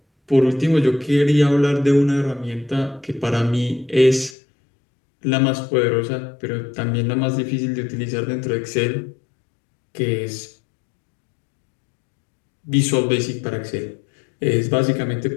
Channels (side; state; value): right; drops out; at 4.4 s